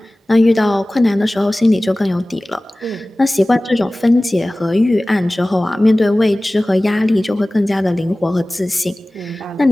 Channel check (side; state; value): both; normal; correlation 0.98